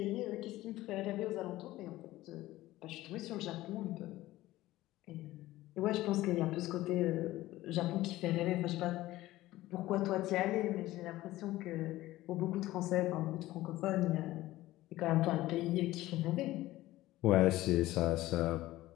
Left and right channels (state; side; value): quieter; right; 16.6 dB